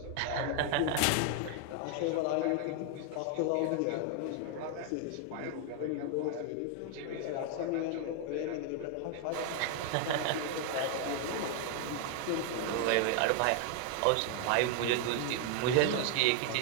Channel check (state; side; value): different; both; correlation 0.00